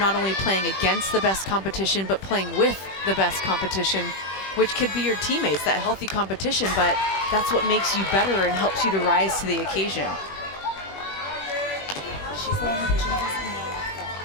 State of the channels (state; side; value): late; right; 21 ms